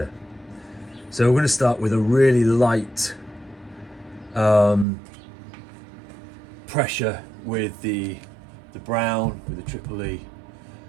So we're going to start with a really light pressure with the brown, with the triple E,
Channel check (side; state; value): left; drops out; at 4.9 s